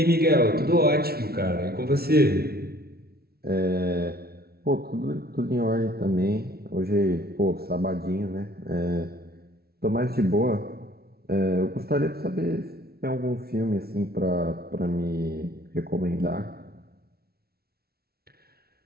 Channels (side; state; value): left; late; 0.45 ms